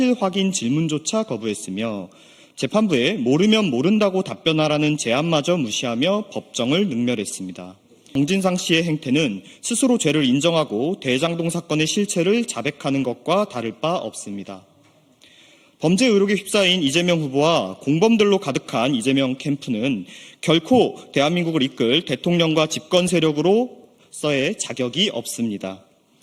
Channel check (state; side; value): identical; both; correlation 1.00